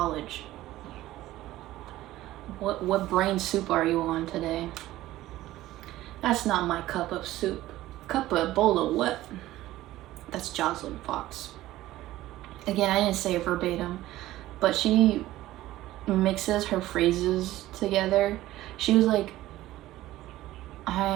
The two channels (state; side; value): quieter; left; 15.7 dB